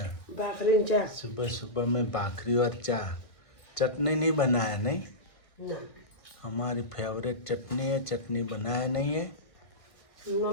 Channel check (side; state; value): right; late; 1.5 ms